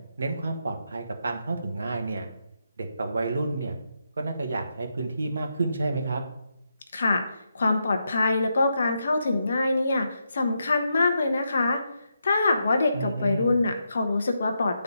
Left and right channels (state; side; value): inverted; both; correlation -0.83